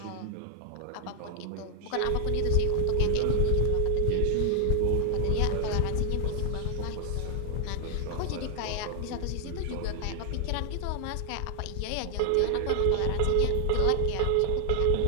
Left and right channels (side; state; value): both; different; correlation 0.00